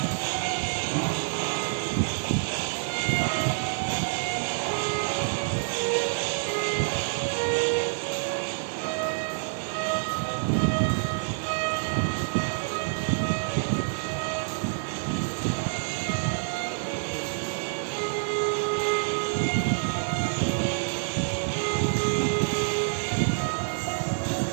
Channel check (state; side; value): silent; left; 60 dB below the other